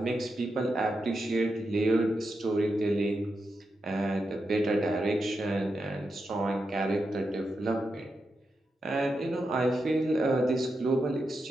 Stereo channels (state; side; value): normal; both; correlation 0.87